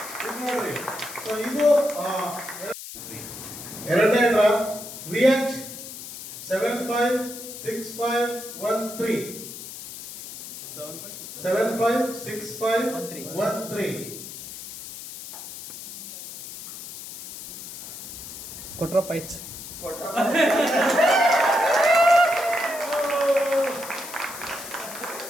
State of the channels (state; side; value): noise; left; hiss, 11 dB below the sound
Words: ಇದು ನೋಡ್ರಿ. ಸೊ ಇದು ಎರಡನೇ ಡ್ರಾ VH 756513 756513 ಕೊಟ್ರಪ್ಪ ಹೆಚ್ಚು.